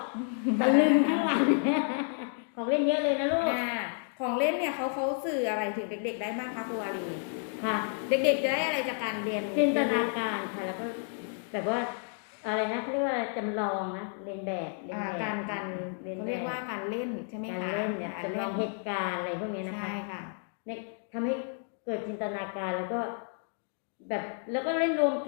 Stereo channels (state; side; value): silent; right; 57 dB below the other